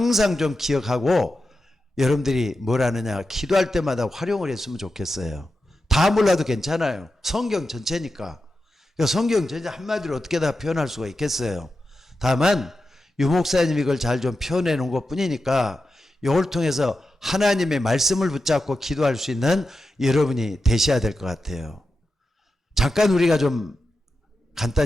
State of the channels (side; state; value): both; normal; correlation 0.90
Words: 좀 기억하고 여러분들이 뭘 하느냐 기도할 때마다 활용을 했으면 좋겠어요. 다 몰라도 괜찮아요. 성경 전체니까. 성경 전체 한마디로 어떻게 다 표현할 수가 있겠어요. 다만 유목사님이 이걸 잘 좀 표현해 놓은 것 뿐이니까 이걸 통해서 하나님의 말씀을 붙잡고 기도할 수 있는 여러분이 되셔야 될 것 같아요. 잠깐 우리가 좀